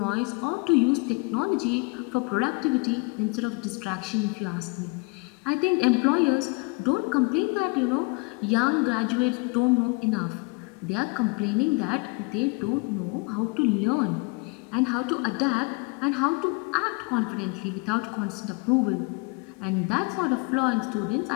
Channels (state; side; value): quieter; right; 29.4 dB